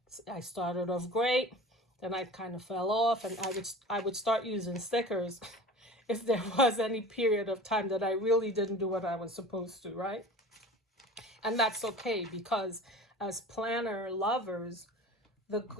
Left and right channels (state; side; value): normal; both; correlation 0.38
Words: I started off great, then I kind of fell off, and I would start using stickers if there was any period of time that I really didn't do what I was supposed to, right? And that's okay, because as planner lovers, the